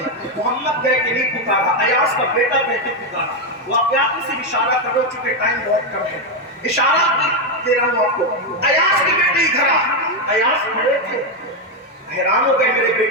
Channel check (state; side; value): normal; both; correlation 0.06